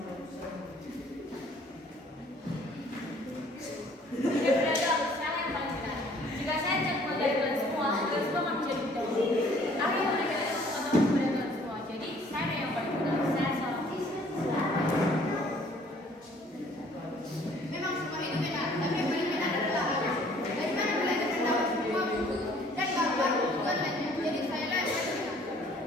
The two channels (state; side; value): normal; both; correlation 0.57